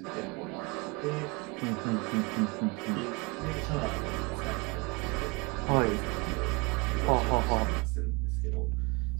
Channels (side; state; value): left; quieter; 27.4 dB